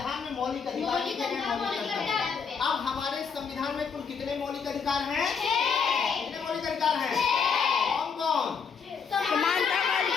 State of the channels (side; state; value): right; quieter; 6.1 dB